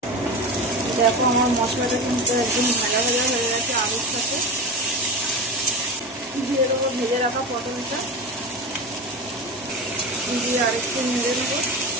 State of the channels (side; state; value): both; normal; correlation 0.25